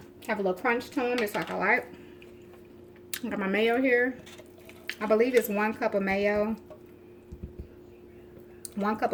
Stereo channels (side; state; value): both; identical; correlation 1.00